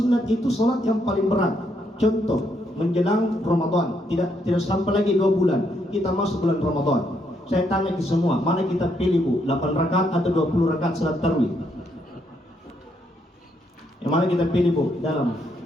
itu salat yang paling berat. Contoh, menjelang Ramadan, tidak sampai lagi 2 bulan kita masuk bulan Ramadan. Saya tanya ke semua, mana kita pilih Bu? 8 rakaat atau 20 rakaat salat tarawih? Yang mana kita pilih Bu? Dalam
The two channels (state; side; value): normal; both; correlation 0.75